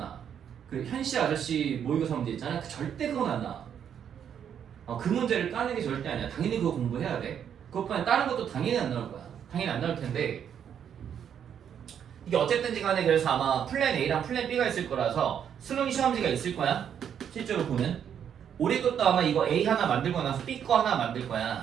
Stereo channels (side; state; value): left; quieter; 8.6 dB